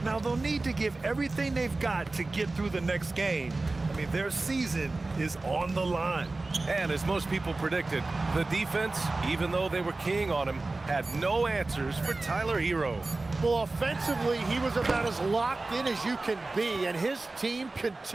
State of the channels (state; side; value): quieter; left; 3.3 dB